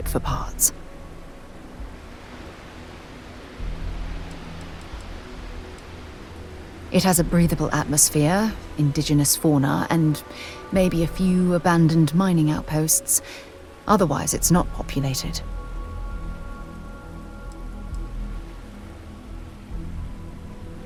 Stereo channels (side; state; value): both; identical; correlation 1.00